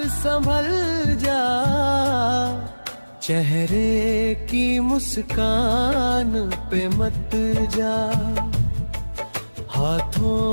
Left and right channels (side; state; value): both; inverted; correlation -1.00